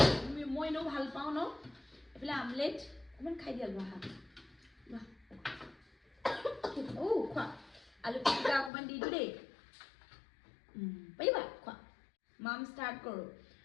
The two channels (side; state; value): right; drops out; at 8.7 s